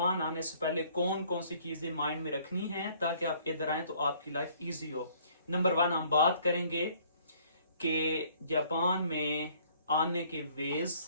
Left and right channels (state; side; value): inverted; both; correlation -0.59